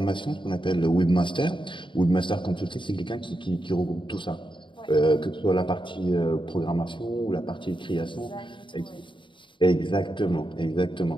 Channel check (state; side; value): late; right; 0.24 ms